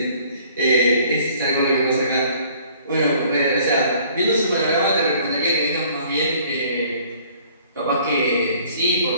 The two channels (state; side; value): inverted; both; correlation -0.56